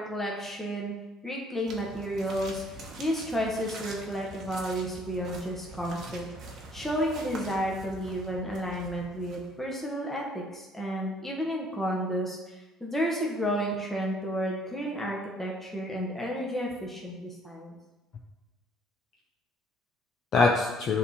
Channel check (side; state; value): both; normal; correlation 0.61